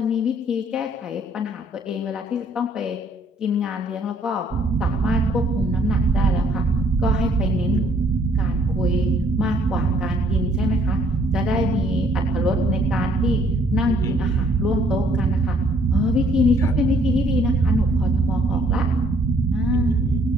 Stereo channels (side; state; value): both; normal; correlation 0.63